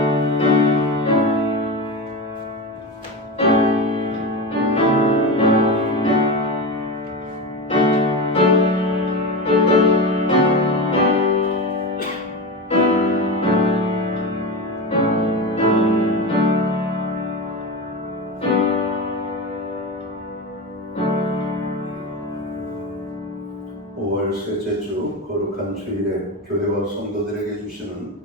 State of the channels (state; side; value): normal; both; correlation 0.22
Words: 셋째 주 거룩한 주일에 교회와 성도들에게 주시는